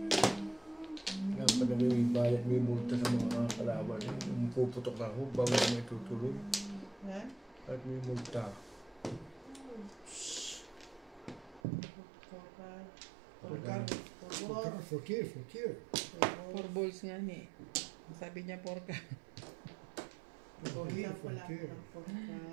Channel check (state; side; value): drops out; left; at 11.6 s